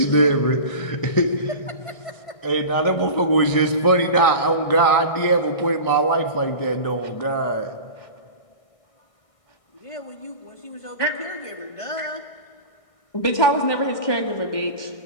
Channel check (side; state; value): right; late; 1.6 ms